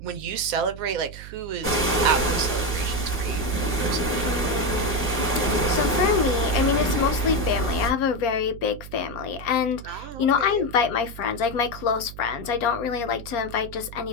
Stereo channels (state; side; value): noise; right; hum, 14 dB below the sound